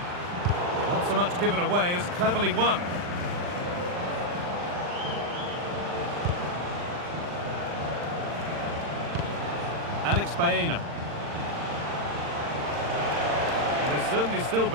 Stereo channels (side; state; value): left; late; 40 ms